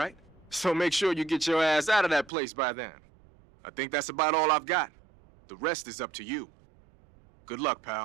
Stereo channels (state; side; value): drops out; left; at 2.3 s